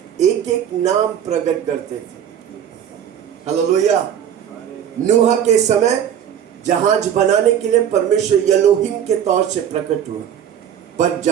एक एक नाम प्रकट करते थे। हालेलुया। नूह के समय जहाज बनाने के लिए परमेश्वर एलोहिम के तौर से प्रकट हुआ, पर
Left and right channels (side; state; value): left; quieter; 9.2 dB